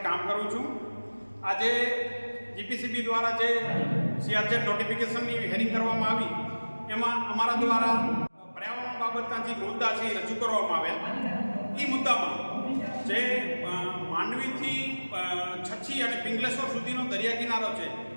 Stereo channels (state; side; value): inverted; both; correlation -1.00